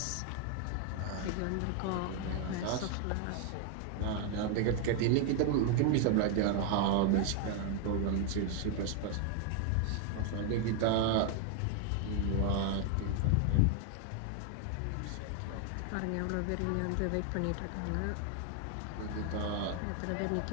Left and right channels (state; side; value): different; both; correlation 0.01